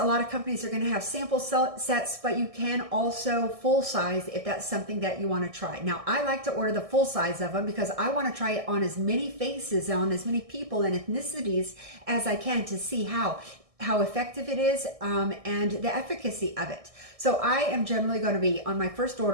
lot of companies are going to have sample sets, but you can also full size if that's something that you want to try. Now, I like to order the full size of them because I want to try it on as many faces, on as many people and ethnicities as I can to see how effective it is and the efficacy of it. So I am generally going to be, on my first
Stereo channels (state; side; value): late; left; 1.6 ms